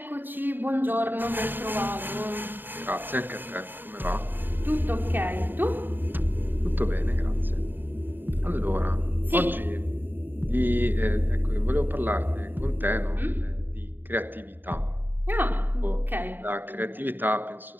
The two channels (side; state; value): left; late; 0.093 ms